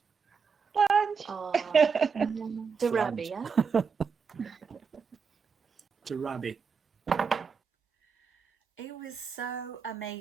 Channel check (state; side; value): quieter; left; 5.7 dB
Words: Slange. Oh, Darabi, yeah? To rabbit. It was so